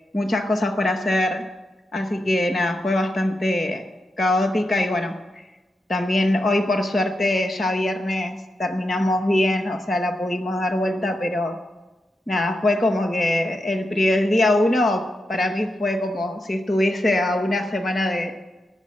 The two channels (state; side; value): normal; both; correlation 0.87